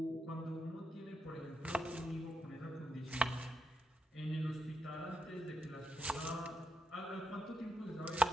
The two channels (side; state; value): both; normal; correlation 0.84